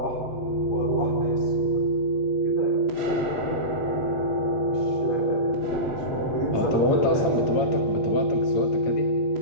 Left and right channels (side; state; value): right; late; 8.4 ms